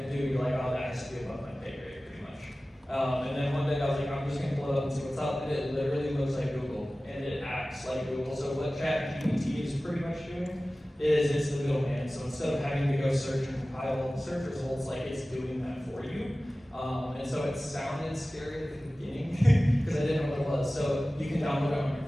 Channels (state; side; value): normal; both; correlation 0.97